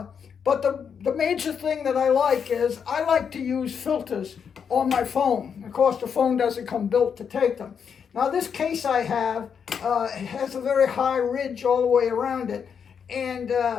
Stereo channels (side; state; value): right; quieter; 7.0 dB